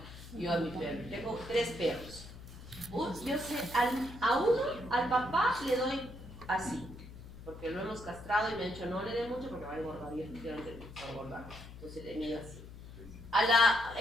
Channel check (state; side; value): noise; left; hum, 14 dB below the sound